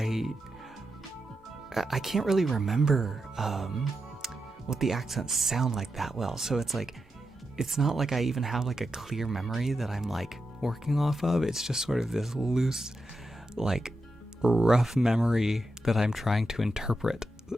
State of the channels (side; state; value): both; normal; correlation 0.88